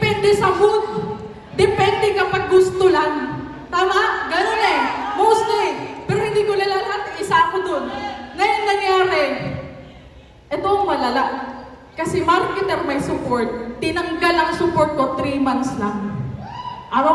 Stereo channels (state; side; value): identical; both; correlation 1.00